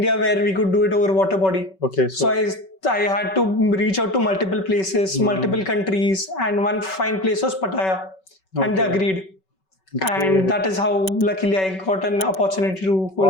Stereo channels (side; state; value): right; late; 5.3 ms